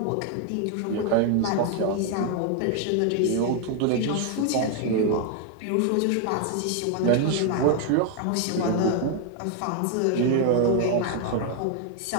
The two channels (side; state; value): both; different; correlation 0.00